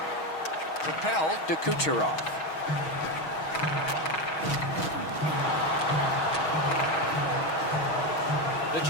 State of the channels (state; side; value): late; right; 6.3 ms